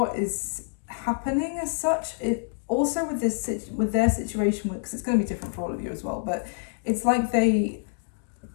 is happening as such. It also with their situation, because it's going to be different for all of you as well, but it's like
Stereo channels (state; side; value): silent; right; digital silence